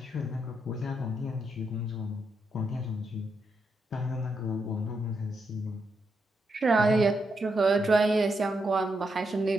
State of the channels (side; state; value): both; normal; correlation 0.82